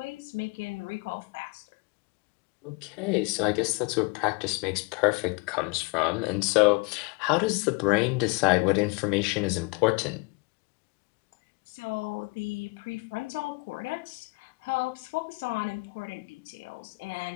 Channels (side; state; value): right; quieter; 28.9 dB